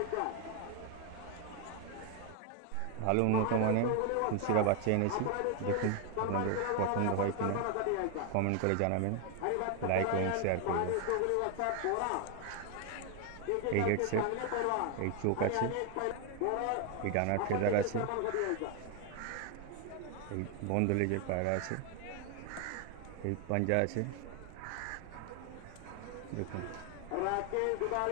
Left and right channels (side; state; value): both; different; correlation 0.01